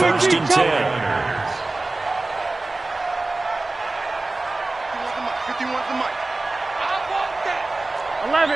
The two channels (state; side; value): quieter; left; 3.1 dB